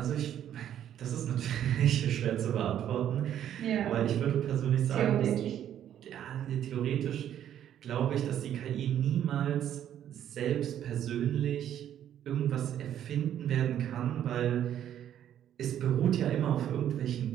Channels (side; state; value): left; quieter; 10.5 dB